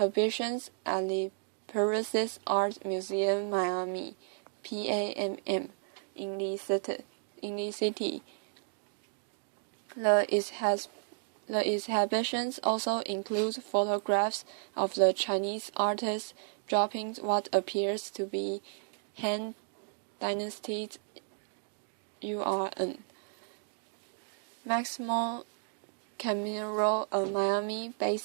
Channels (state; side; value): silent; left; digital silence